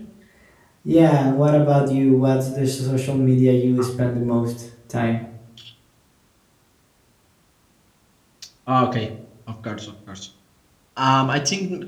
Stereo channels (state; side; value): identical; both; correlation 1.00